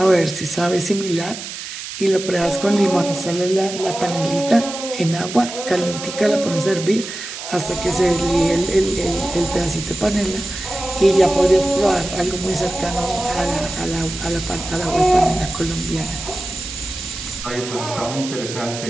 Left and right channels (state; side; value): noise; right; hiss, 9 dB below the sound